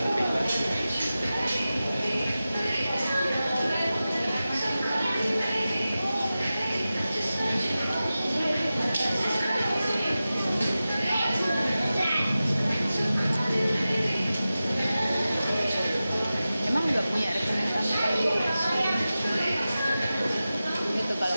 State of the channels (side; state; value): both; inverted; correlation -0.95